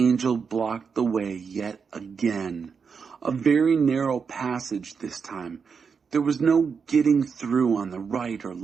blocked the way yet again. A very narrow passage this time. There was no getting through on the right or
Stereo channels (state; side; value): quieter; left; 5.9 dB